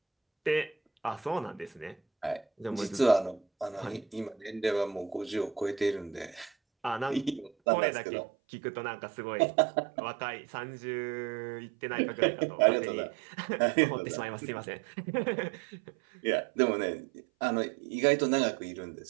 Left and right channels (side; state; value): left; drops out; at 7.5 s